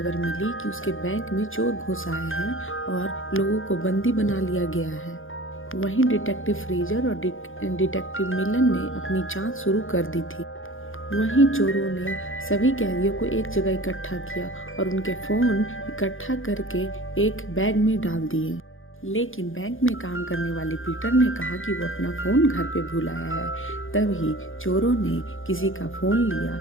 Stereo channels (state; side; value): late; right; 0.59 ms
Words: मिली कि उसके बैंक में चोर घुस आए हैं और लोगों को बंदी बना लिया गया है। वहीं डिटेक्टिव फ्रेजर और डिटेक्टिव मिलन ने अपनी जांच शुरू कर दी थी। वहीं चोरों ने सभी कैदियों को एक जगह इकट्ठा किया और उनके फोन इकट्ठा करके एक बैग में डाल दिए। लेकिन बैंक में काम करने वाले पीटर ने कहा कि वो अपना फोन घर पे भूल आया है। तभी चोरों ने किसी का फोन लिया